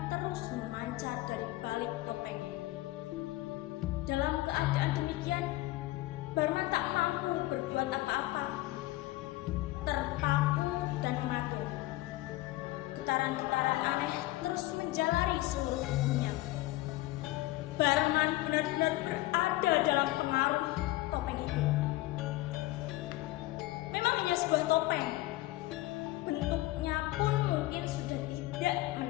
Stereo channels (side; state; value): right; quieter; 17.9 dB